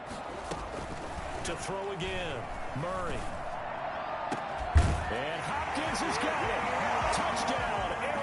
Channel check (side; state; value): both; identical; correlation 1.00